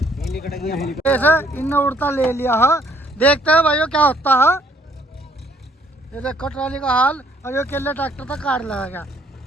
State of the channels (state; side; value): normal; both; correlation 0.65